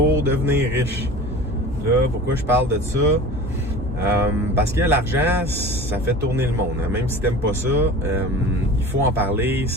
devenir riche. Là, pourquoi je parle de ça? Parce que l'argent, ça fait tourner le monde. Hein. Même si t'aimes pas ça, il faut en parler.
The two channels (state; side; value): normal; both; correlation 0.37